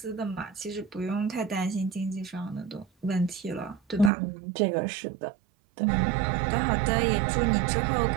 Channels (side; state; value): left; drops out; at 4.1 s